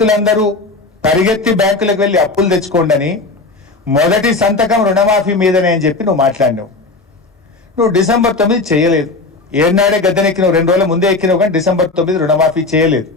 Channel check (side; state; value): right; quieter; 3.5 dB